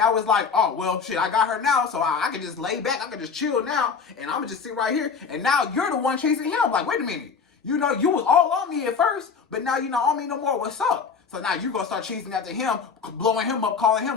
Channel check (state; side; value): quieter; right; 5.7 dB